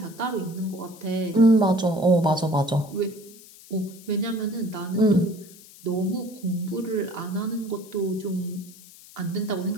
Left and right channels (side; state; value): left; noise; hiss, 21 dB below the sound